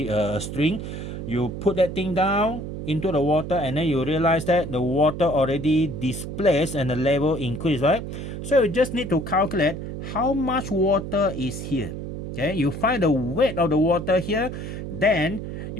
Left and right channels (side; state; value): right; noise; hum, 7 dB below the sound